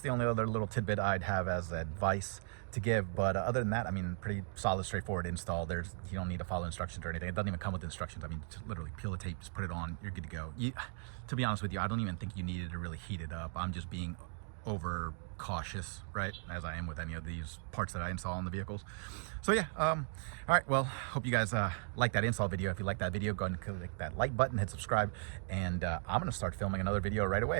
the only other little tidbit I'd have as advice to give. But other than that, I mean, pretty solid, straightforward install. You don't need to follow instructions or anything. It doesn't even come with instructions. I mean, just literally peel the tape, just put it on, you're good to go. To be honest with you, I don't even think you needed to really heat it up. I'm just being over cautious, right, as I am with any of these parts that I install on the vehicles. So yeah, all right, well, hope you guys like that install video. If you like that video, go ahead and click that like button, hit subscribe, and I'm gonna start filming another video right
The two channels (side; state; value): left; silent; 53 dB below the other